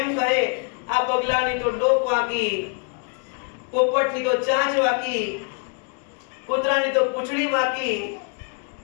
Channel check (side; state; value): right; quieter; 37.0 dB